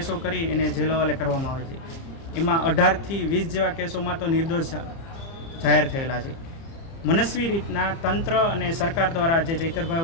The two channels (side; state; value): right; late; 30 ms